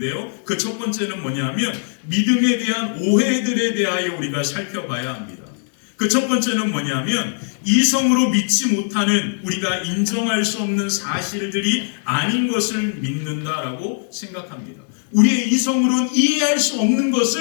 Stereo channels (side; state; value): right; silent; digital silence